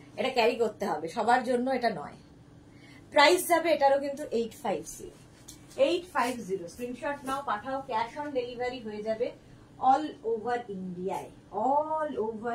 এটা ক্যারি করতে হবে, সবার জন্য এটা নয়। প্রাইস যাবে এটারও কিন্তু 850। 850 স্ক্রিনশট নাও, পাঠাও, ক্যাশ অন ডেলিভারি হয়ে যাবে অল ওভার ইন্ডিয়ায়। অল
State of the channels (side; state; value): both; identical; correlation 1.00